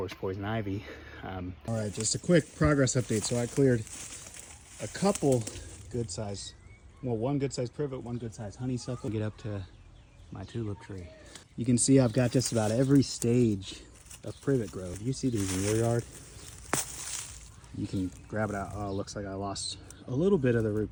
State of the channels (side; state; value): both; identical; correlation 1.00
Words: poison ivy. All right, just a quick progress update. So I cleared a couple good size, well, one good size privet, one good size honeysuckle. Get up to my tulip tree. You can see I've got just about every stage of privet growth. You see these in your yard. You can grab it out. Oh, it looks like I lost a little bit of the root,